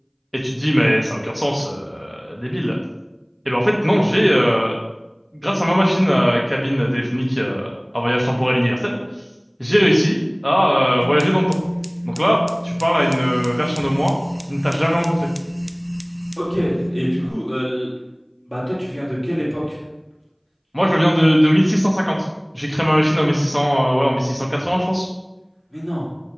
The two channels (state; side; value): identical; both; correlation 1.00